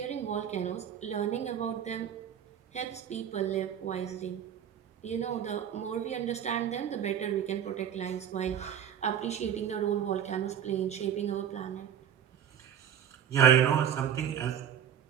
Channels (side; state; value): left; quieter; 9.2 dB